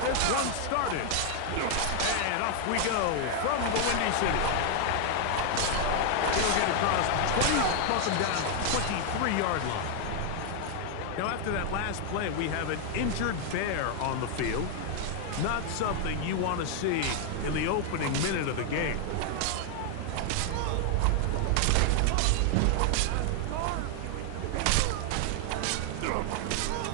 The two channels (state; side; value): different; both; correlation 0.00